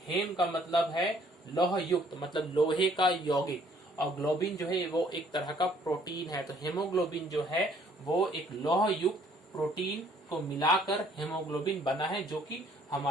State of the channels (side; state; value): both; normal; correlation 0.62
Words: हेम का मतलब है लौह युक्त, मतलब लोहे का यौगिक, और ग्लोबिन जो है वो एक तरह का प्रोटीन है। तो हेमोग्लोबिन जो है वो एक लौह युक्त प्रोटीन को मिलाकर हेमोग्लोबिन बना है, जो कि